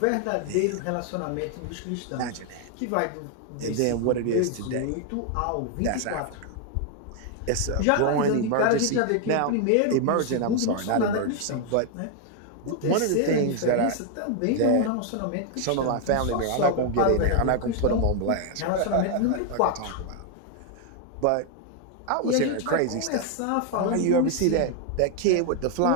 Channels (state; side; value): different; both; correlation 0.00